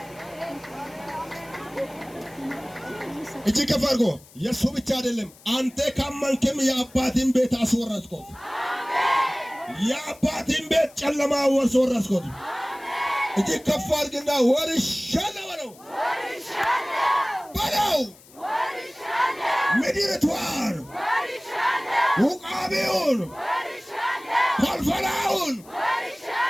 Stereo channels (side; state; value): left; noise; hiss, 24 dB below the sound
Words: እጅ ከፍ አድርጎ የእሱ ብቻ አይደለም። አንተ ካመንክም የአባቴን ቤት አስወረስኩት። የአባቴን ቤት ጨለማ አስወረስኩት። እጅ ከፍ አድርግና ወርሻለሁ በለው። ምድሪቷን፣ ውቃቢውን፣ ፈልፈላውን